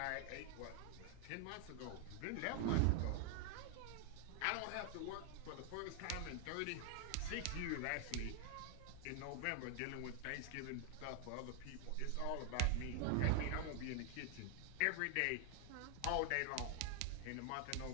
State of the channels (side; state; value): both; different; correlation 0.00